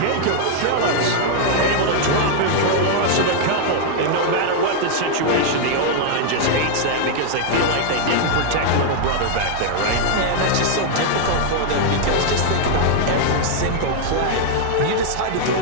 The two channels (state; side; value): different; both; correlation 0.00